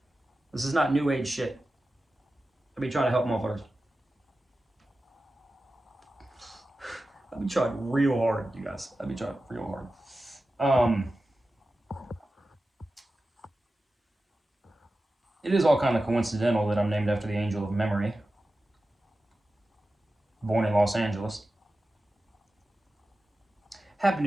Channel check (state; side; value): normal; both; correlation 0.94